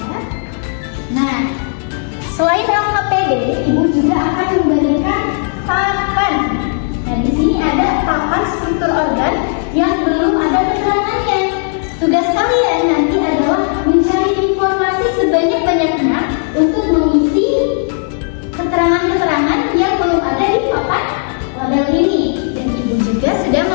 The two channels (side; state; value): right; silent; 56 dB below the other